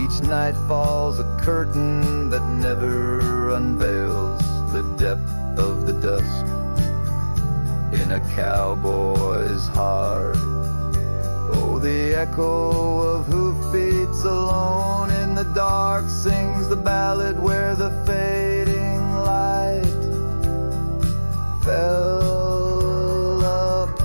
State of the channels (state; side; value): inverted; both; correlation -1.00